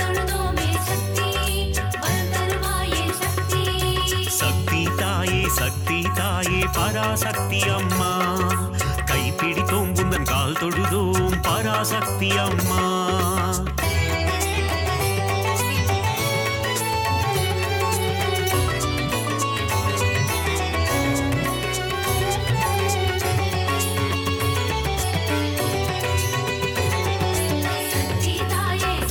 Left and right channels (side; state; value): both; identical; correlation 1.00